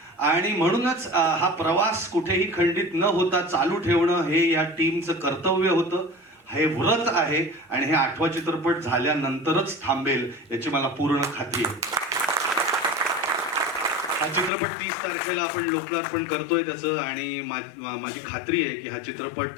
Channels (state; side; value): drops out; right; at 14.5 s